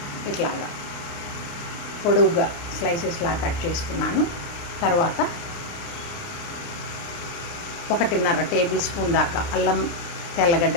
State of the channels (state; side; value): late; right; 29 ms